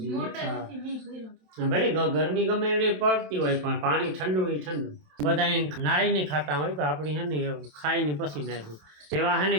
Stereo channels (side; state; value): left; late; 27 ms